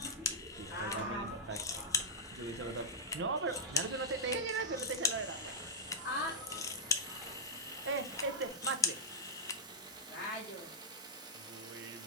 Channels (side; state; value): both; normal; correlation -0.05